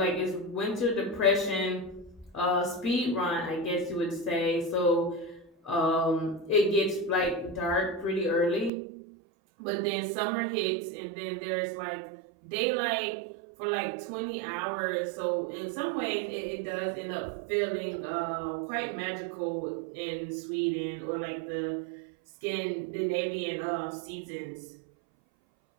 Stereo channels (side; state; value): left; drops out; at 8.7 s